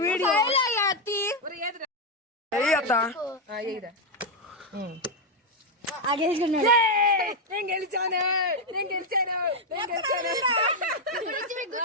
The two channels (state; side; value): normal; both; correlation 0.02